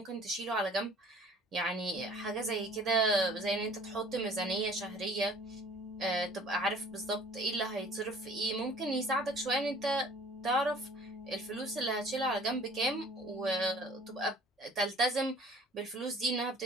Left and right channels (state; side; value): normal; both; correlation 0.51